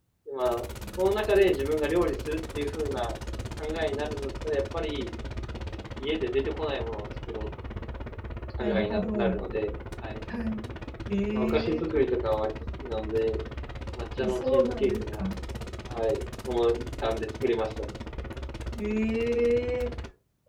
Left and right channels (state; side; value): identical; both; correlation 1.00